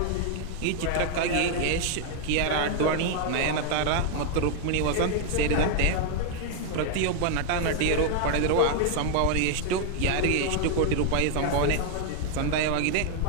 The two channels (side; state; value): both; different; correlation 0.00